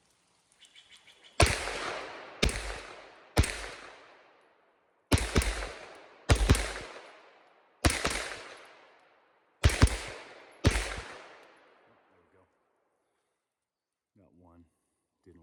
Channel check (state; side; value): identical; both; correlation 1.00